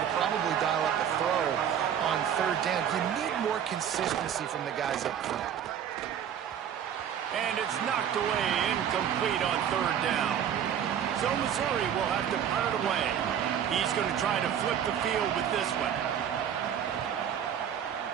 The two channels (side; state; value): left; quieter; 9.0 dB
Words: to probably dial up the throw on third down. You need more consistency from the guys up front. And it's knocked away, incomplete on third down. So Missouri will have to punt it away. He's going to try to flip the field with this one.